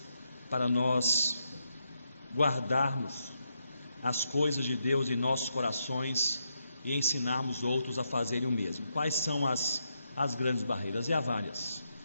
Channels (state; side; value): inverted; both; correlation -0.81